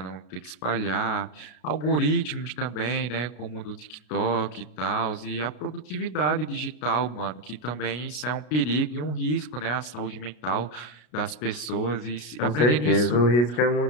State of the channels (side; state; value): right; late; 33 ms